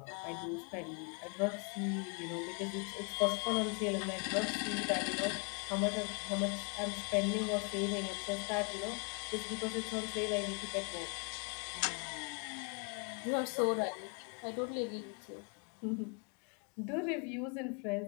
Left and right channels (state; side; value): quieter; right; 34.2 dB